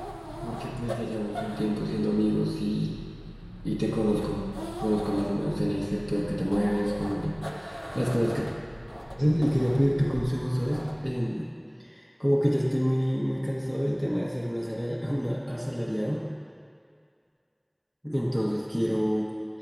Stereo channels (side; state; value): both; identical; correlation 1.00